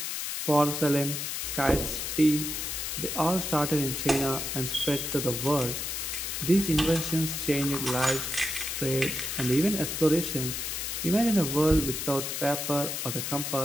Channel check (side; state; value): left; noise; hiss, 3 dB below the sound